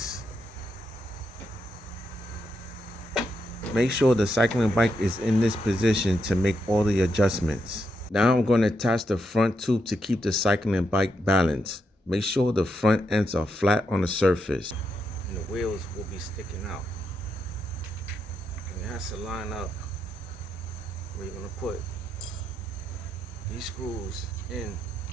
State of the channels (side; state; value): both; normal; correlation 0.81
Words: Make sure the cycling bike is in this position to make all the adjustments. Now I'm going to attach the front tube to keep the cycling bike balanced. Make sure the front ends are flat on the surface. And the wheels will be sticking out. And it has to line up where you're going to put these screws in